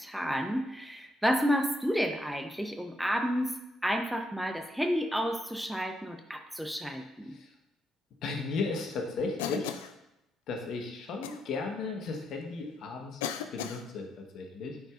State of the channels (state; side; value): normal; both; correlation 0.80